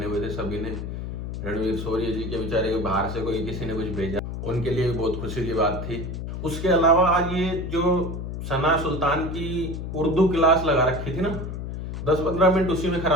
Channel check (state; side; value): noise; left; hum, 6 dB below the sound